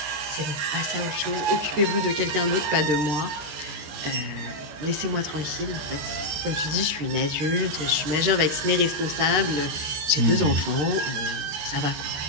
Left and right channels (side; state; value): left; late; 13 ms